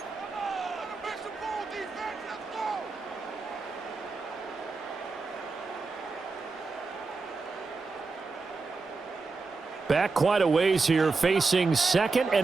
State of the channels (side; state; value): left; quieter; 4.1 dB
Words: Back quite a ways here, facing 2nd